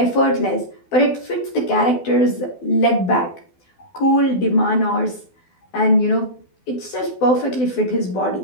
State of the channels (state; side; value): late; right; 12 ms